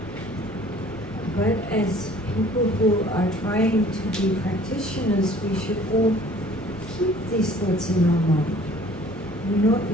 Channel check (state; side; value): normal; both; correlation 0.52